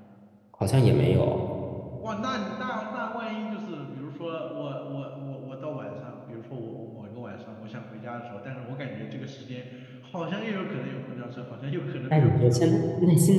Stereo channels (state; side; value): identical; both; correlation 1.00